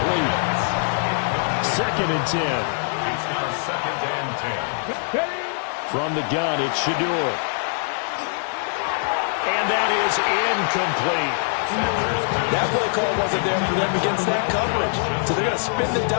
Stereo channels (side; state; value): right; silent; digital silence